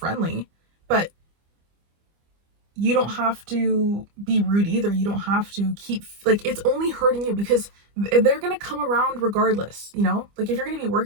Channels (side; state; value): left; late; 25 ms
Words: but you don't have to be rude either. You don't have to keep, like, it's only hurting you because they're going to come around regardless, you know? Like, if you're going to be